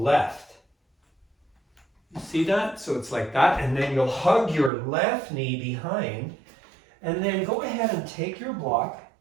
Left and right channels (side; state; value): left; drops out; at 4.7 s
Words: You see that? So it's like that, and then you'll hug your left knee behind, and then go ahead and take your block.